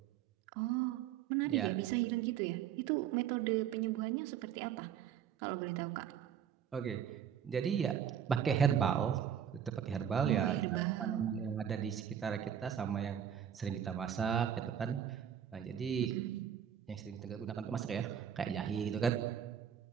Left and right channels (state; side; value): quieter; left; 9.0 dB